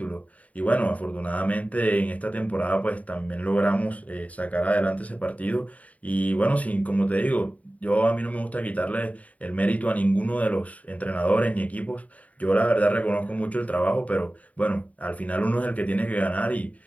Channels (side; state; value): right; late; 0.069 ms